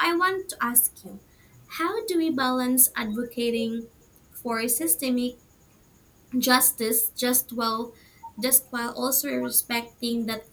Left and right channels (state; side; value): identical; both; correlation 1.00